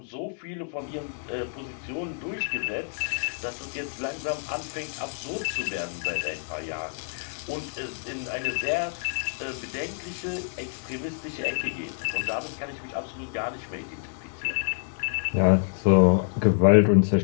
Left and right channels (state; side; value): silent; right; digital silence